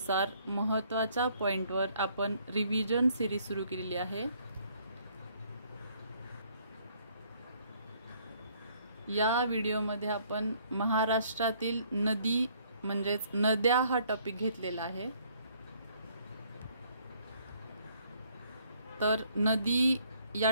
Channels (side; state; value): both; inverted; correlation -0.64